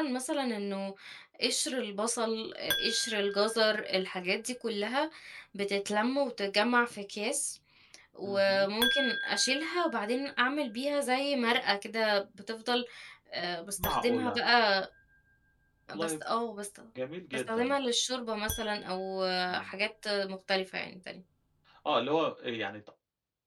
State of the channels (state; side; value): identical; both; correlation 1.00